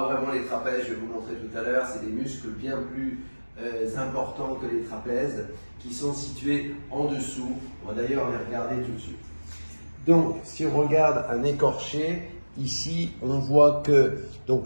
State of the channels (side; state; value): both; inverted; correlation -1.00